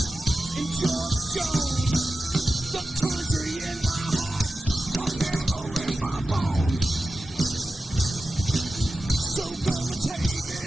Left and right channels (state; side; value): normal; both; correlation 0.93